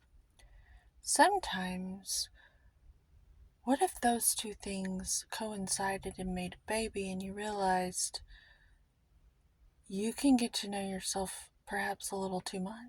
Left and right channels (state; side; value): identical; both; correlation 1.00